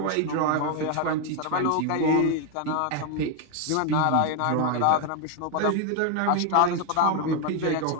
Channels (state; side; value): different; both; correlation 0.01